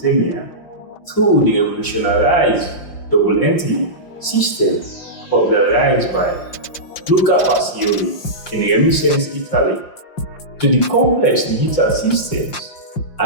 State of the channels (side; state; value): right; late; 5.7 ms